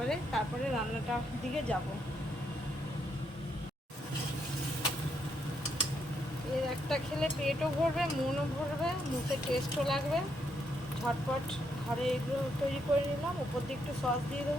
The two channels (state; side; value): normal; both; correlation 0.77